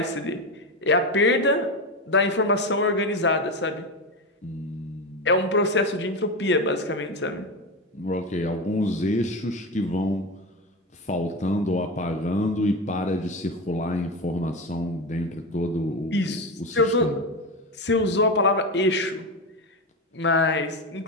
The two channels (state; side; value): normal; both; correlation 0.18